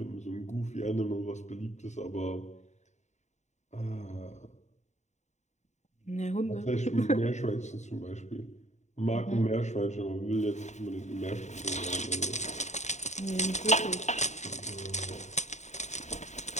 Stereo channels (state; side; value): late; right; 0.34 ms